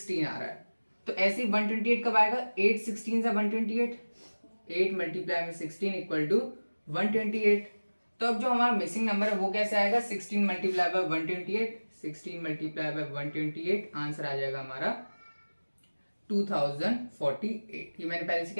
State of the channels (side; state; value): both; inverted; correlation -1.00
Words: आ रहा है। तो ऐसे ही 128 कब आएगा, 8 16 जा 128, 8 × 16 = 128। तो अब जो हमारा मिसिंग नंबर है वो कैसे आएगा, 16 × 128, 16 × 128 आंसर आ जाएगा हमारा 2048। ये मैंने पहले से